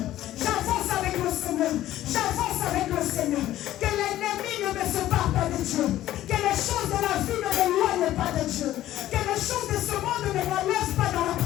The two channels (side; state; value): right; quieter; 13.8 dB